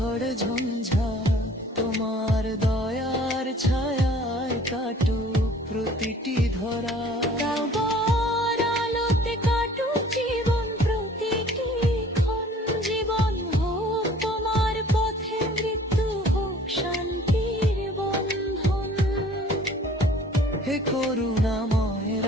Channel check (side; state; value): both; normal; correlation 0.52